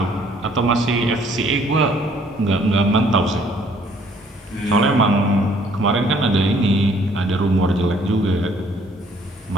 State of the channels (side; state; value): both; normal; correlation 0.61